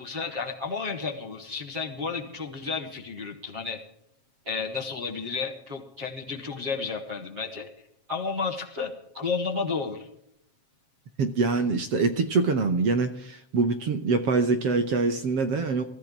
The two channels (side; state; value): left; late; 7.4 ms